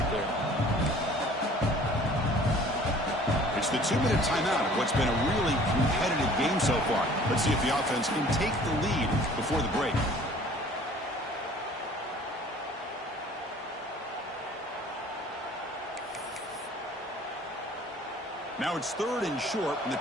there. It's the 2-minute timeout of what's been a really competitive game so far. Let's see if the offense can take the lead before the break. Now it's 3rd and short from the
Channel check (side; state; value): both; normal; correlation 0.51